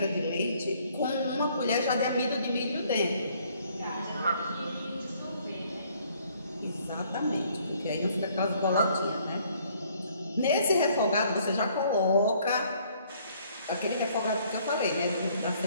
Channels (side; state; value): both; inverted; correlation -0.63